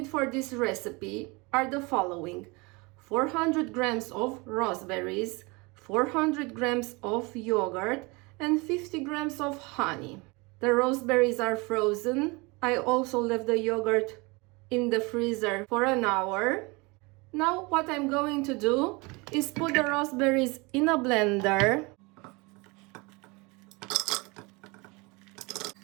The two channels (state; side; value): quieter; left; 26.5 dB